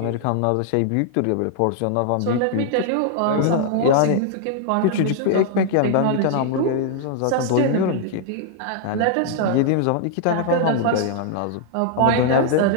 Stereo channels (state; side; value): different; both; correlation -0.01